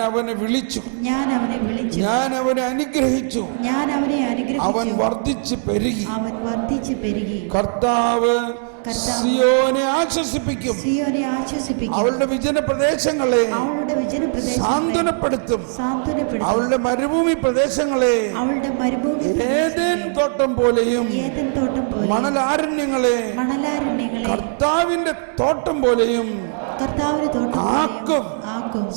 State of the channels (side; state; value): left; silent; digital silence